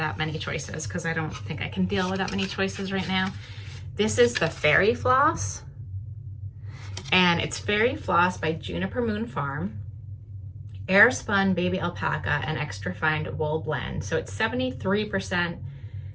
many choices, because I don't think I can deal with that many choices right now. This is the Fairy Floss, and it's Fairy Floss by Juniper Moon Farm. Air spun baby alpaca and extra fine wool blend. So it's 73%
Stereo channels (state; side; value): identical; both; correlation 1.00